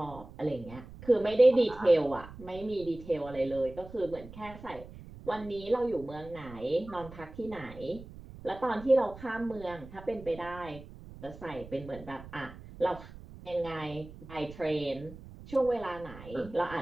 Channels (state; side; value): noise; right; rumble, 16 dB below the sound